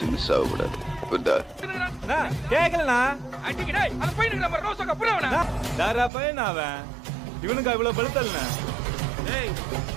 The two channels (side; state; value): left; drops out; at 6.1 s